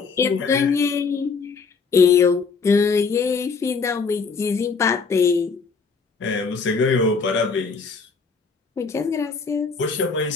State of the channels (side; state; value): right; quieter; 5.0 dB